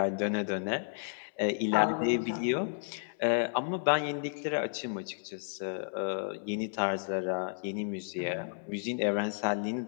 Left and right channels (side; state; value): right; silent; 56 dB below the other